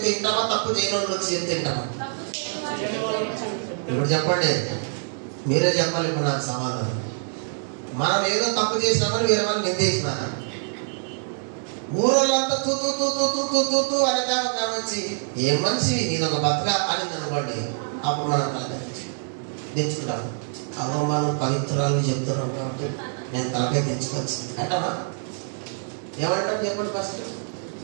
వింటామా, తప్పు చేయని వాళ్ళు వచ్చి చెప్తే వింటామా? ఇప్పుడు చెప్పండి, మీరే చెప్పాలి ఇప్పుడు నాకు సమాధానం. మనం ఏదో తప్పు చేసినామని వేరే వాళ్ళు నిందేసినా ఊరోళ్ళంతా తూ తూ తూ తూ తూ తూ తూ తూ అనే వచ్చి ఏం మనిషి నీదొక బతక అని అనుకోండి, అప్పుడు మనం తెచ్చుకుంటాం. అవ్వ మనం పవిత్రాలు చెప్తున్నాం కాబట్టి నేను తలకాయ తెచ్చుకోవచ్చు అంటామా? ఏమంటారు చెప్పండి ఫస్ట్.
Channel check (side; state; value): left; silent; digital silence